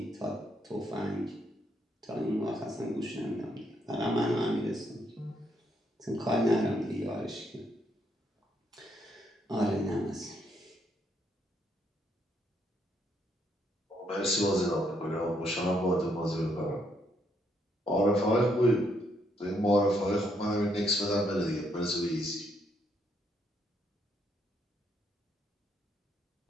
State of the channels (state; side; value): normal; both; correlation 0.74